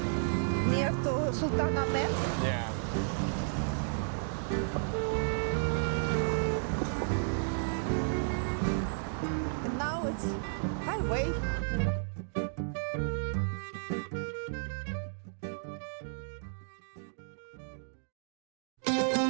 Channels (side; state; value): left; silent; digital silence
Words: near to Sultan Ahmet. Yeah. And now it's highway.